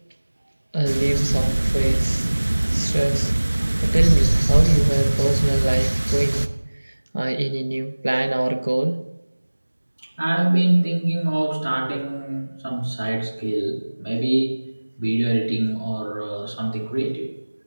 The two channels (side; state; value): both; inverted; correlation -1.00